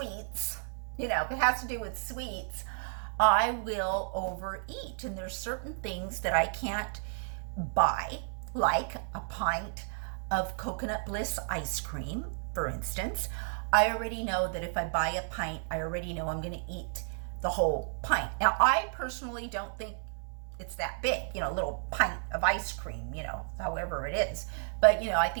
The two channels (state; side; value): silent; left; 56 dB below the other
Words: I will overeat. And there's certain things that I can't buy, like a pint of Coconut Bliss ice cream, for instance. I already know that if I buy a pint, I already know I'm going to eat the whole pint. Now, I personally don't think it's that big, a little pint of ice cream, however it is. But, I